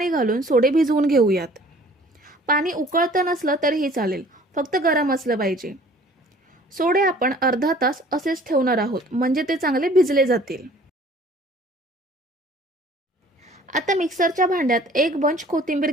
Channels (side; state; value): both; normal; correlation 0.52